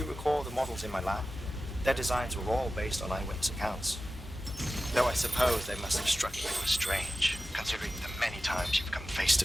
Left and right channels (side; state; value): both; normal; correlation 0.94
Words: recall the models in my lab? Their designs were all based on eyewitness accounts. Though I suppose they must have struck you as strange, considering the many times you've come face to